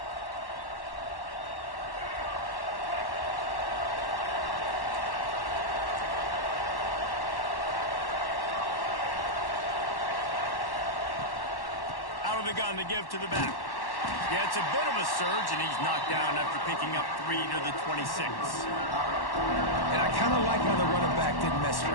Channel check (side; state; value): right; late; 1.1 ms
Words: Out of the gun to give to the back. Yeah, it's a bit of a surge, and he's knocked down after picking up 3 to the 26. And I kind of like how the running back didn't mess